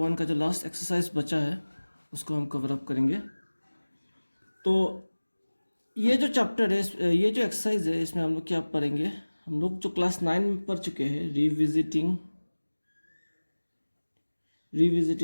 का जो लास्ट एक्सरसाइज बचा है उसको हम कवर अप करेंगे। तो ये जो चैप्टर है, ये जो एक्सरसाइज है, इसमें हम लोग क्या पढ़ेंगे? हम लोग जो क्लास 9 में पढ़ चुके हैं,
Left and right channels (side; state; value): both; inverted; correlation -1.00